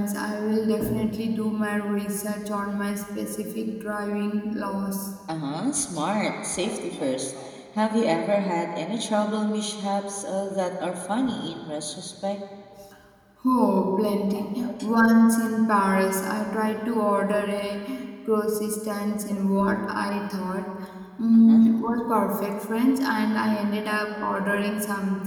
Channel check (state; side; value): identical; both; correlation 1.00